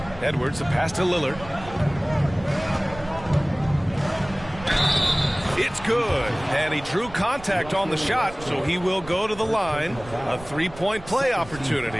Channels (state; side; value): noise; right; rumble, 16 dB below the sound